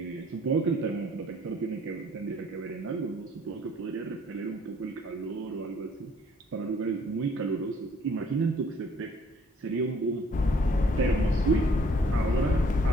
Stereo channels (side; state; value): both; normal; correlation 0.59